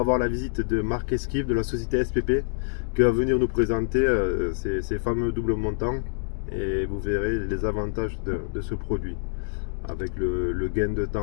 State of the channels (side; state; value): right; silent; digital silence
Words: voir la visite de Marc Esquive de la société SPP qui va venir nous présenter ces fameux doubles montants et vous verrez les avantages de ce produit avec le gain de